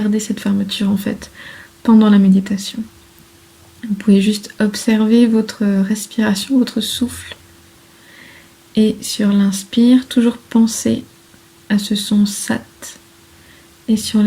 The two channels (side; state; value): both; identical; correlation 1.00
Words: cette fermeture en fait pendant la méditation. Vous pouvez juste observer votre respiration, votre souffle, et sur l'inspire, toujours penser à ce son sat, et sur